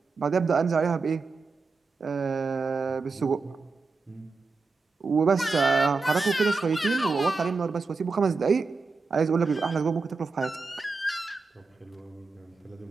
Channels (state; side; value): quieter; left; 4.2 dB